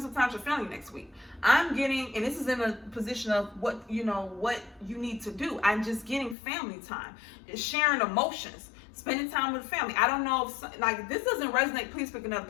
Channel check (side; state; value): right; drops out; at 6.4 s